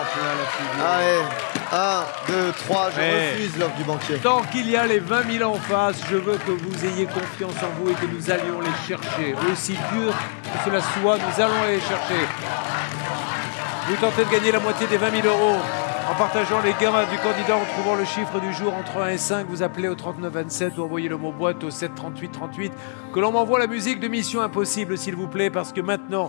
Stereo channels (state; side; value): silent; right; 63 dB below the other